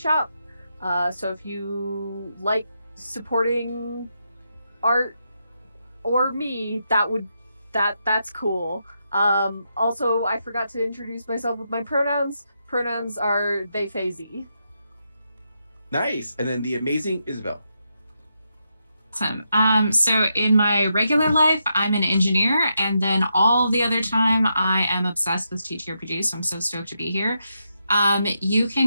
So if you like supporting art or me, that's cool. Also, I forgot to introduce myself with my pronouns. Pronouns are they, they. Nice. And then the amazing Isabel. Awesome. So in my regular life, I'm an engineer, and then all the other time I am obsessed with TTRPG, so I'm so stoked to be here. You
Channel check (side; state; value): both; inverted; correlation -0.83